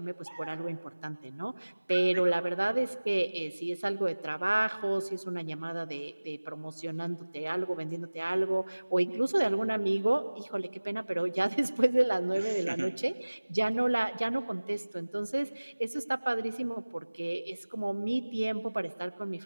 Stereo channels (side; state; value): both; inverted; correlation -1.00